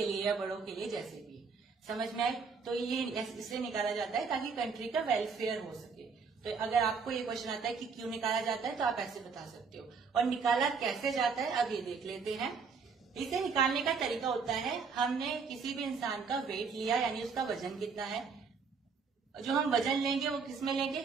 लिए या बड़ों के लिए, जैसे भी। समझ में आए। तो ये इसलिए निकाला जाता है ताकि कंट्री का वेलफेयर हो सके। तो अगर आपको ये क्वेश्चन आता है कि क्यों निकाला जाता है तो आप ऐसे बता सकते हो। और निकाला कैसे जाता है अब ये देख लेते हैं। इसे निकालने का तरीका होता है, हमने किसी भी इंसान का वेट लिया, यानी उसका वजन कितना है। जो हम वजन लेंगे वो किस में लेंगे,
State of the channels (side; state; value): left; quieter; 5.3 dB